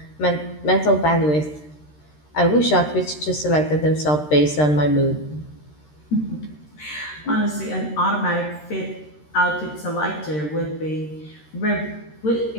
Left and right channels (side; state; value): right; late; 13 ms